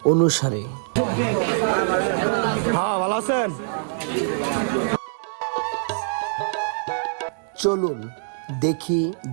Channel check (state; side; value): silent; left; digital silence